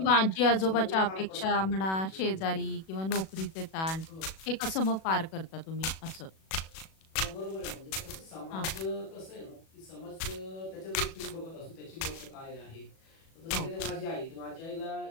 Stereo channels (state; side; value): late; right; 37 ms